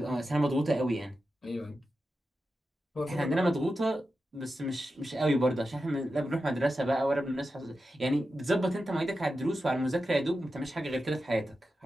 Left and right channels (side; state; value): both; normal; correlation 0.91